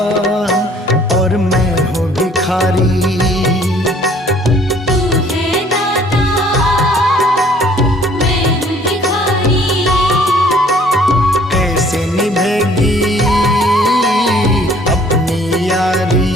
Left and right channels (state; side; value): normal; both; correlation 0.57